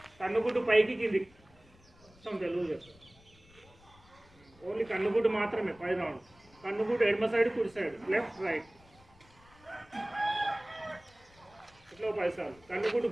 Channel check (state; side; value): noise; left; rumble, 27 dB below the sound